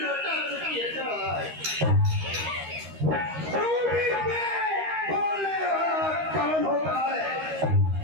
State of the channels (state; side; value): late; left; 13 ms